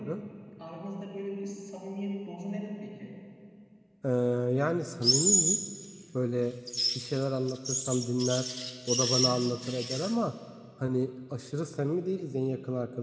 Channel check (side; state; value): both; identical; correlation 1.00